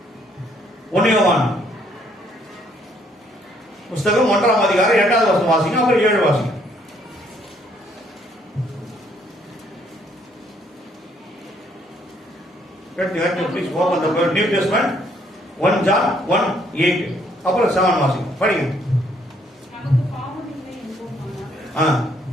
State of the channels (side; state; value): both; normal; correlation 0.67